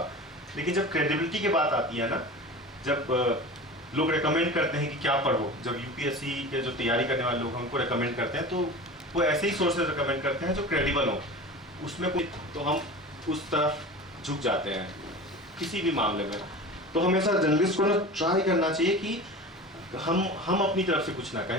लेकिन जब क्रेडिबिलिटी की बात आती है ना, जब लोग रेकमेंड करते हैं कि क्या पढ़ो, जब यूपीएससी के जो तैयारी करने वाले लोग हैं उनको रेकमेंड करते हैं, तो वो ऐसे ही सोर्सेज रेकमेंड करते हैं जो क्रेडिबल हो, उसमें कोई, तो हम उस तरफ झुक जाते हैं किसी भी मामले में। तो हमेशा जर्नलिस्ट को ना ट्राई करना चाहिए कि हम अपनी तरफ से कुछ ना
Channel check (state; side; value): normal; both; correlation 0.34